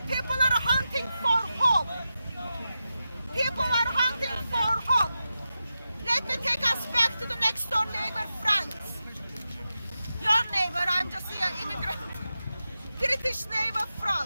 people are hunting for hope. People are hunting for hope. Let me take us back to the next door neighbor, France. Your neighbor, I'm just here, immigrant. British neighbor,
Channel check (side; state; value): both; inverted; correlation -0.91